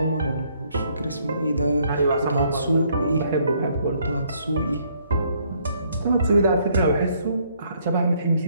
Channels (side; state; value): both; inverted; correlation -0.67